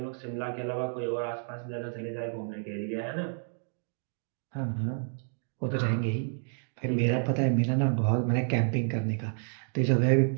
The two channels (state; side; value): silent; left; 58 dB below the other